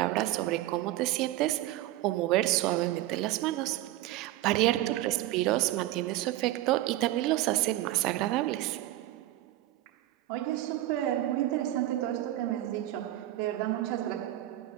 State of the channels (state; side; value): quieter; left; 15.3 dB